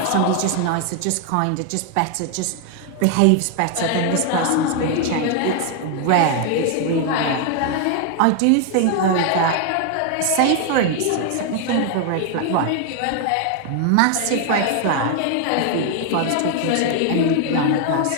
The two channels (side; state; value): both; different; correlation 0.00